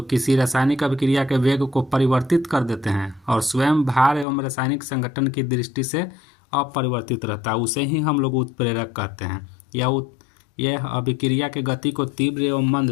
किसी रासायनिक अभिक्रिया के वेग को परिवर्तित कर देते हैं और स्वयं भार एवं रासायनिक संगठन की दृष्टि से अपरिवर्तित रहता है, उसे ही हम लोग उत्प्रेरक कहते हैं। यह अभिक्रिया के गति को तीव्र एवं मंद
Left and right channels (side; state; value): right; drops out; at 4.2 s